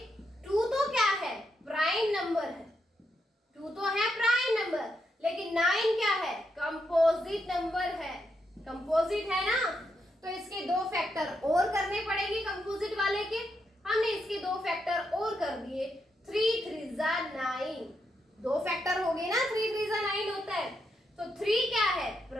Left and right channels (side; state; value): both; normal; correlation 0.82